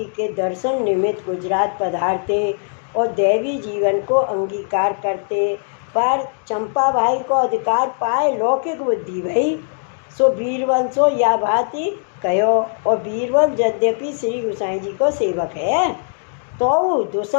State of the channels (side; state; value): right; silent; 66 dB below the other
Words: के दर्शन निमित्त गुजरात पधारते और दैवी जीवन को अंगीकार करते, पर चंपा भाई को अधिकार पाए लौकिक बुद्धि भई, सो बीरबल सो या भांति कहो। और बीरबल यद्यपि श्री गोसाई जी को सेवक है, तो